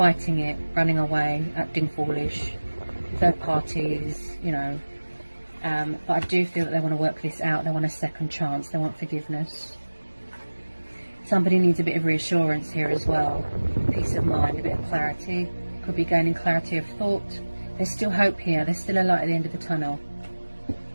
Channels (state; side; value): inverted; both; correlation -1.00